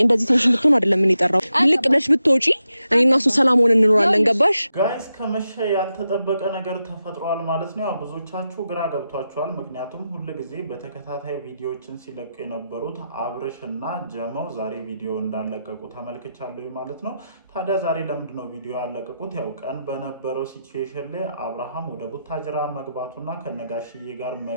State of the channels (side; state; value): both; inverted; correlation -0.87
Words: እንደዚህ ቴንሽን ብትሆን አይደለም ምን ይጠራው ልቅ ብለሽ ብትወጪ እኔና እሱ ሰላም ሆነን እንኖራለን ገባሽ ጋይስ ከመሸ ያልተጠበቀ ነገር ተፈጥሯል ማለት ነው ያው ብዙዎቻችሁ ግራ ገብቷችኋል ምክንያቱም ሁሉ ጊዜ በተከታታይ ቪዲዮዎችን ሲለቁ የነበሩት አብርሽና ጀመው ዛሬ ቪዲዮ እንዳለቀቁ ተመልክቻለሁ ማለት ነው ታዲያ ዛሬ ለምንድነው ቪዲዮ ያለቀቁት ያው ቀን በነበረው ሲቹዌሽን ላይ አብርሃም ወደ ቡታጅራ መግባቱና ከነጋሽዬ ጋር